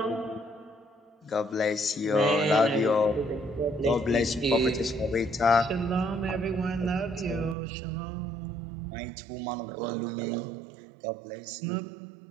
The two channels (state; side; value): drops out; left; at 7.6 s